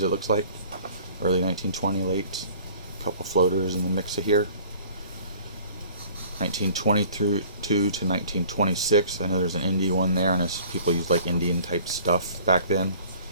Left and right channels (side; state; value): both; inverted; correlation -0.50